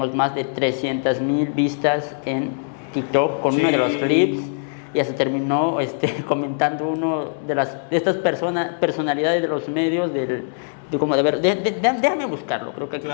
más de 300,000 vistas en TikTok con uno de los clips. Ya se terminó comentando uno de estas personalidades de los medios déjame buscarlo, creo que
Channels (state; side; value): silent; right; digital silence